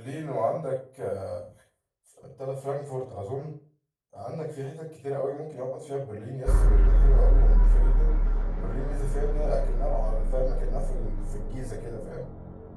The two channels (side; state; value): both; identical; correlation 1.00